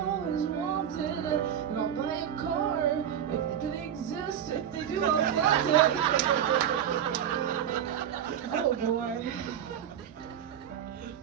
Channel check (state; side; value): quieter; left; 9.5 dB